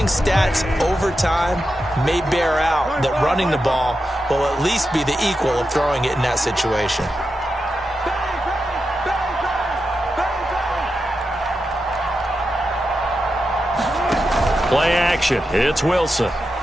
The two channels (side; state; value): both; normal; correlation 0.89